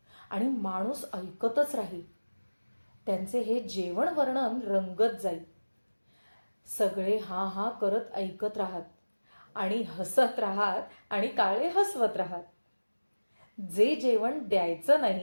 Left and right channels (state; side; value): inverted; both; correlation -1.00